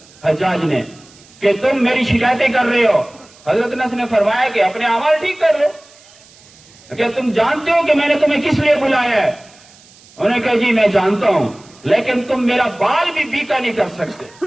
حجاج نے کہ تم میری شکایتیں کر رہے ہو۔ حضرت انس نے فرمایا کہ اپنے اعمال ٹھیک کر لو، کہ تم جانتے ہو کہ میں نے تمہیں کس لیے بلایا ہے؟ انہوں نے کہا جی میں جانتا ہوں، لیکن تم میرا بال بھی بیکا نہیں کر سکتے.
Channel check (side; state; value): right; noise; hiss, 26 dB below the sound